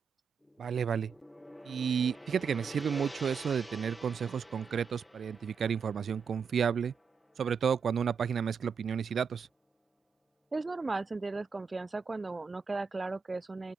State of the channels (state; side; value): quieter; left; 6.1 dB